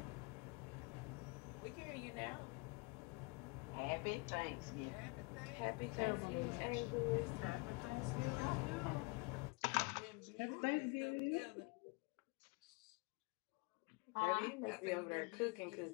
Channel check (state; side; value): quieter; right; 29.7 dB